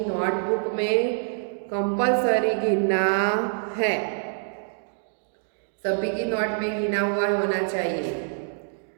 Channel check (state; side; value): silent; left; digital silence